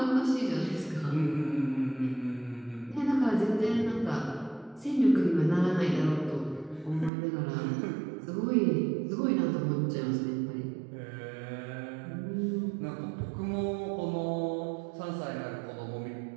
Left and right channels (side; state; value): left; drops out; at 7.1 s